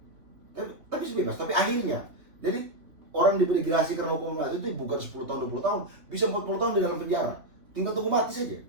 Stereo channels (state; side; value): late; left; 3.4 ms